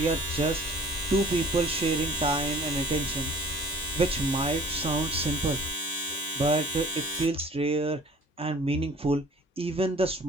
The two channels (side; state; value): both; normal; correlation 0.49